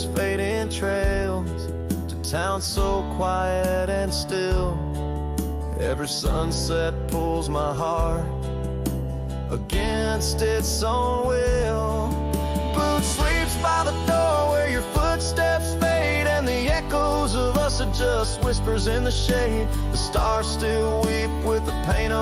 fading trails, to towns so quiet and still. Every sunset pulls my heart against its own will. Boot sleeps by the door where your footsteps fade, and the echoes of us are just whispers in the shade. The stars still weep with the pain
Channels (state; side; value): identical; both; correlation 1.00